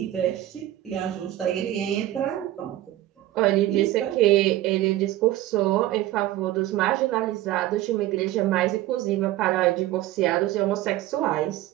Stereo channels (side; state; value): left; quieter; 14.7 dB